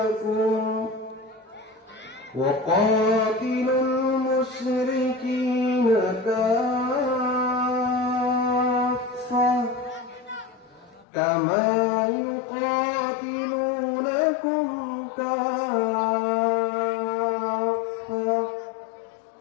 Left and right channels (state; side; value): drops out; right; at 11.1 s